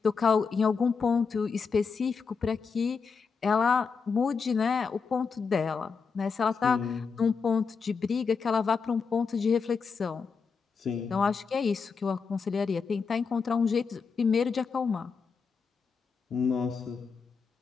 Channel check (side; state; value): right; quieter; 5.4 dB